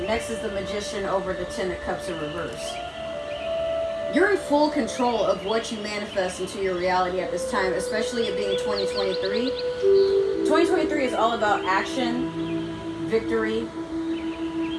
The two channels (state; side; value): identical; both; correlation 1.00